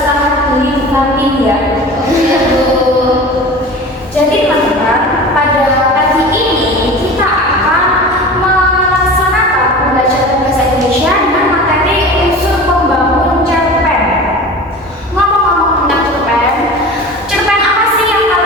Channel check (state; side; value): normal; both; correlation 0.36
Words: dulu di kantin ya. Jadi teman-teman, pada pagi ini kita akan melaksanakan pembelajaran bahasa Indonesia dengan materi unsur pembangun cerpen. Ngomong-ngomong tentang cerpen, cerpen apa sih yang